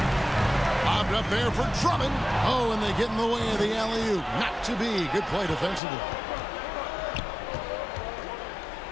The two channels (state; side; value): drops out; right; at 5.8 s